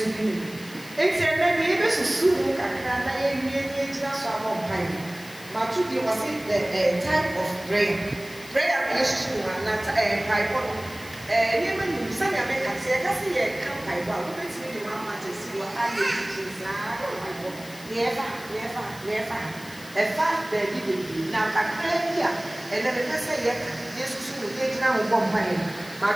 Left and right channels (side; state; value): left; noise; hiss, 18 dB below the sound